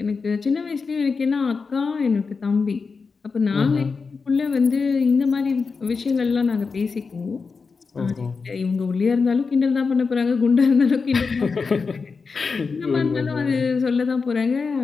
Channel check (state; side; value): quieter; right; 4.8 dB